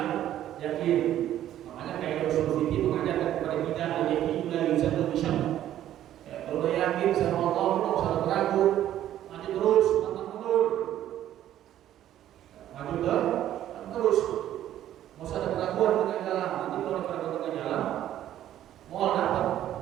yakin. Makanya kayak Rasul Siti mengajarkan kepada kita al-yakin la yuzadu bi syarr. Kalau udah yakin sama Allah, tidak usah ragu, maju terus, pantang mundur. Maju terus. Mau usah ada keraguan dengan jalan. Nanti kalau ada keraguan dengan jalan, mau dapat.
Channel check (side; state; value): left; quieter; 12.1 dB